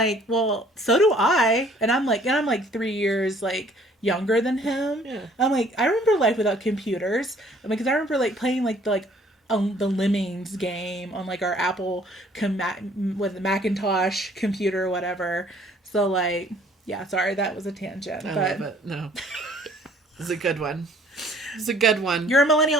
well, so do I. And I'm like 3 years younger than him. Yeah. I'm like, I remember life without computers. Because I remember playing the Lemmings game on our Apple with the Macintosh computer or whatever. So yeah, sorry, that was a tangent. I love it. No, it's a good one. It's a good one. You're a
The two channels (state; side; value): normal; both; correlation 0.58